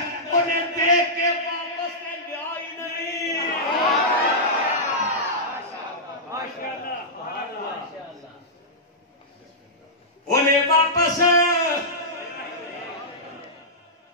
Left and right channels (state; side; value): normal; both; correlation -0.12